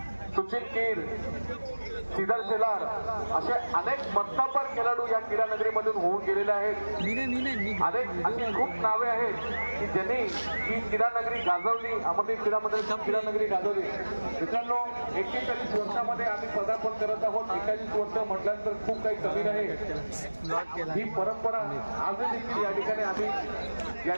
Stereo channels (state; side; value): inverted; both; correlation -1.00